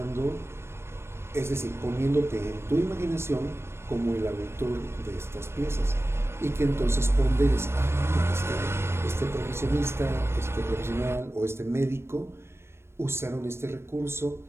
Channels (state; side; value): late; left; 0.12 ms